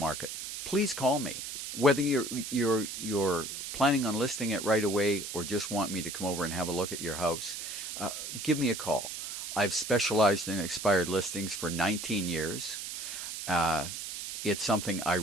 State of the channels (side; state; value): right; noise; hiss, 7 dB below the sound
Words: please call me. Whether you're planning on listing it right away or just want me to come over and have a look at your house, give me a call. I've specialized in expired listings for 19 years. It's something I